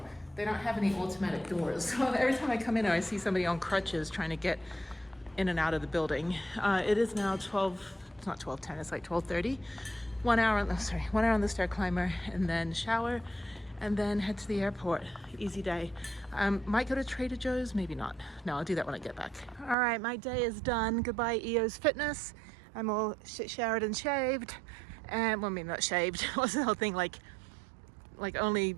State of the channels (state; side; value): drops out; left; at 19.8 s